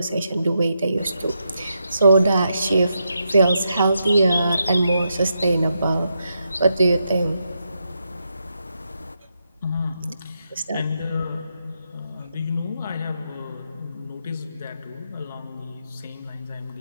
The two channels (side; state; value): both; inverted; correlation -0.83